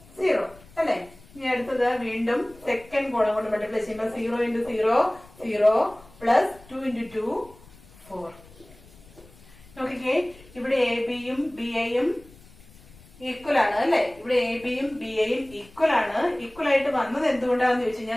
0 അല്ലെ? ഇനി അടുത്തത് വീണ്ടും സെക്കൻഡ് കോളം കൊണ്ട് മൾട്ടിപ്ലൈ ചെയ്യുമ്പോൾ 0 into 0, 0 plus 2 into 2, 4. നോക്കിക്കേ, ഇവിടെ എ ബിയും ബി എയും ഈക്വൽ ആണ് അല്ലെ? ഇവിടെ എ ബിയും ബി എയും ഈക്വൽ ആണ്. ഈക്വൽ ആയിട്ട് വന്നത് എന്തുകൊണ്ടാണെന്ന് ചോദിച്ചു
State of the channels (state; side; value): noise; left; rumble, 24 dB below the sound